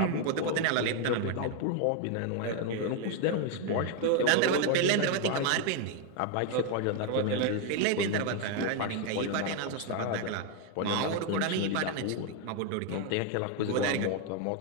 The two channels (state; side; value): different; both; correlation 0.01